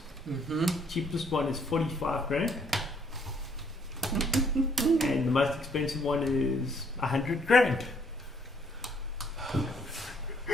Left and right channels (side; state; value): both; normal; correlation 0.66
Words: Cheapest one is 45 grand. And the most expensive one is 100 grand.